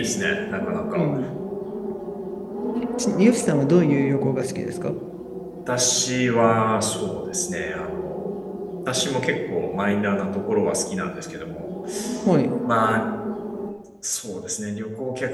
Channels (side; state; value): both; identical; correlation 1.00